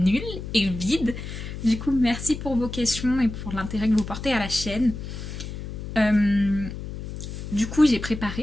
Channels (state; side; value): noise; left; hum, 8 dB below the sound